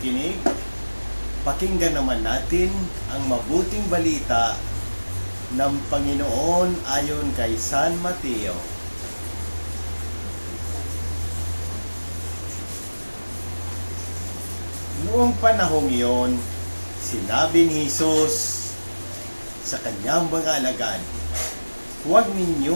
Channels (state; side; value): inverted; both; correlation -1.00